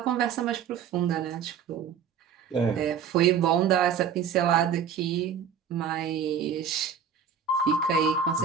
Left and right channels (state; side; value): quieter; left; 7.3 dB